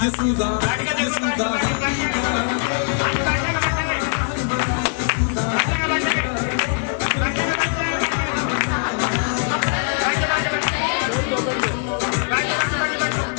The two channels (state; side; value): silent; right; 56 dB below the other